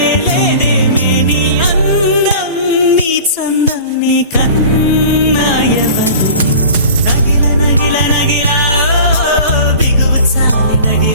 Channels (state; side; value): inverted; both; correlation -0.40